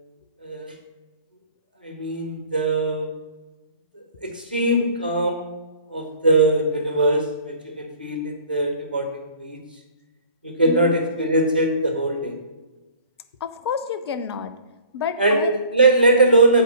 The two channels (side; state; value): both; inverted; correlation -0.50